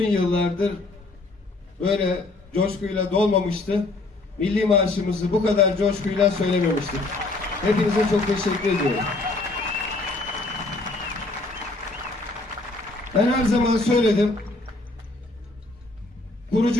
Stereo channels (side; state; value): right; quieter; 3.2 dB